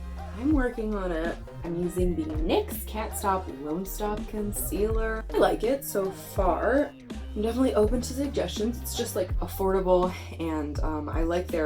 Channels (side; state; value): both; identical; correlation 1.00